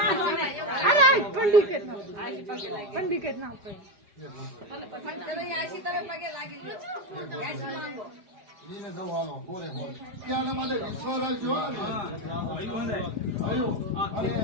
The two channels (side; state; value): left; late; 5.0 ms